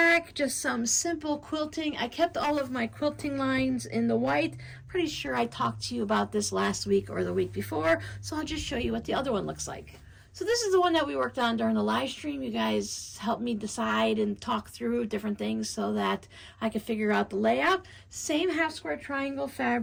just some simple quilting. I kept all of my quilting lines in the white. Pretty sure I talked to you about this last week or the week before, so I'll just show you what the other one looks like. So this is the one that we worked on during the live stream. You guys helped me decide and talk through different things so that I could figure out the layout. Same half square triangle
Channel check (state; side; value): identical; both; correlation 1.00